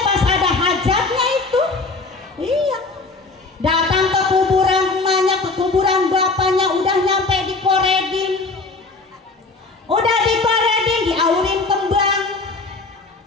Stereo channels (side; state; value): right; quieter; 3.7 dB